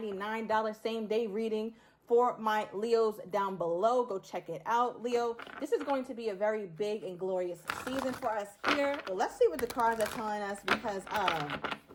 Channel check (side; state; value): both; identical; correlation 1.00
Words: same day reading for my Leos down below. Go check it out, Leo. This is going to be a very big and glorious season for us here. But let's see what the cards are telling us, because